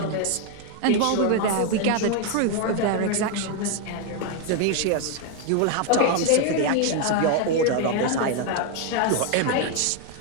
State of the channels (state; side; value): different; both; correlation 0.01